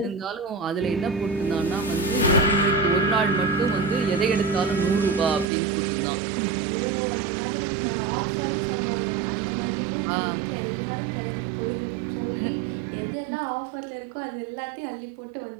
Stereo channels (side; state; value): left; drops out; at 5.5 s